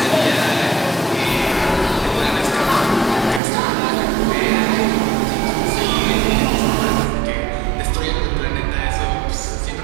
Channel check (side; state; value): left; drops out; at 3.4 s